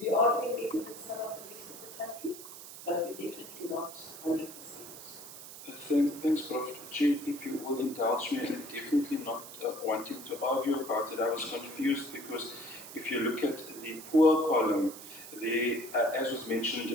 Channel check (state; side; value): noise; right; hiss, 14 dB below the sound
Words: are doing better than some of the rest of the country, but we're definitely not 100%. Thanks, Prof. Chair, if you will indulge me, and definitely not wanting to argue about it. I was confused because if you look at the poor column, as was